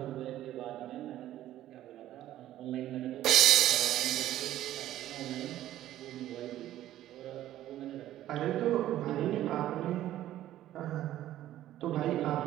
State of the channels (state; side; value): quieter; left; 13.3 dB